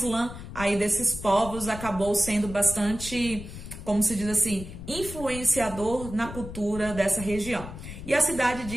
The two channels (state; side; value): noise; left; rumble, 11 dB below the sound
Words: aí desses povos acabou sendo bastante, como se diz assim, influenciador na cultura dessa região. E a cidade